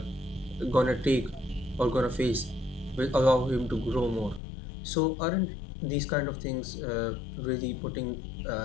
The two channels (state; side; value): drops out; right; at 4.4 s